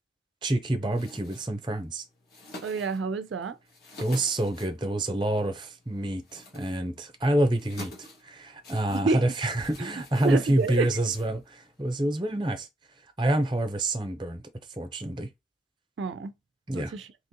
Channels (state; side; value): normal; both; correlation 0.76